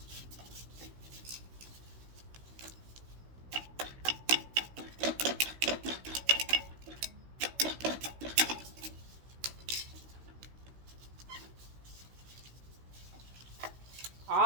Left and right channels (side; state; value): left; late; 16 ms